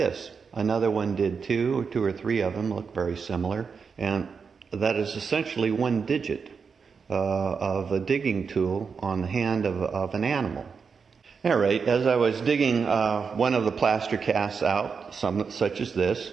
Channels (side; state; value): left; quieter; 5.7 dB